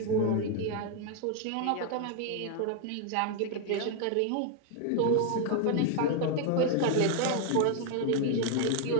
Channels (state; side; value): different; both; correlation 0.00